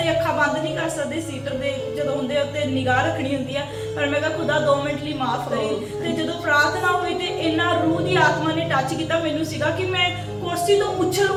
ਅੱਖਾਂ ਬੰਦ ਨਹੀਂ ਕਰ ਸਕਦੇ, ਸੀਟਰ ਦੇ ਜਦੋਂ ਹੁੰਦੇ ਉੱਤੇ ਨਿਗਾਹ ਰੱਖਣੀ ਹੁੰਦੀ ਆ, ਪਰ ਮੈਂ ਕਿਹਾ ਖੁਦਾ 2 ਮਿੰਟ ਲਈ ਮਾਫ ਕਰੀ। ਤੇ ਜਦੋਂ ਪ੍ਰਾਰਥਨਾ ਹੋਈ ਤੇ ਇੰਨਾ ਰੂਹ ਦੀ ਆਤਮਾ ਨੇ ਟੱਚ ਕੀਤਾ, ਮੈਨੂੰ ਸੀਗਾ ਕਿ ਮੈਂ ਕੁਰਸੀ ਤੋਂ ਉਛਲ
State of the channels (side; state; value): both; identical; correlation 1.00